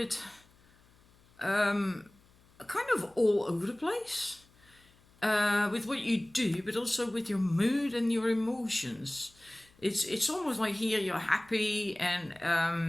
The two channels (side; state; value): left; noise; hum, 30 dB below the sound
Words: kind of all over the place with what you do, but also with your mood and your emotions. It's almost like here you're happy